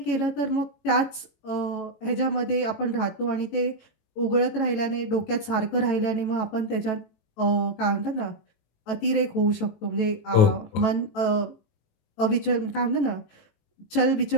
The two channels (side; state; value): right; late; 18 ms